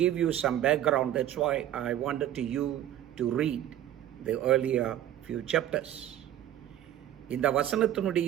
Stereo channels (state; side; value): quieter; left; 12.0 dB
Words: give you some background, that's why I wanted you to read the earlier few chapters. இந்த